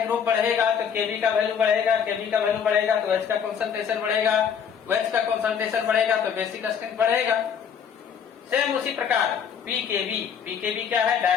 बढ़ेगा तो केवी का वैल्यू बढ़ेगा, केवी का वैल्यू बढ़ेगा तो OH का कंसंट्रेशन बढ़ेगा, OH का कंसंट्रेशन बढ़ेगा तो बेसिक स्ट्रेंथ बढ़ेगा। सेम उसी प्रकार पीकेवी, पीकेवी क्या है?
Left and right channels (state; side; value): quieter; right; 7.4 dB